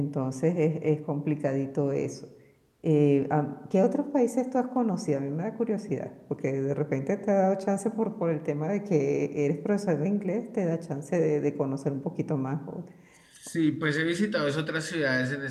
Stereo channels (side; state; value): both; identical; correlation 1.00